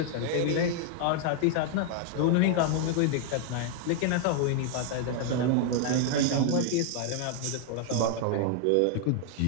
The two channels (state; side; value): different; both; correlation 0.00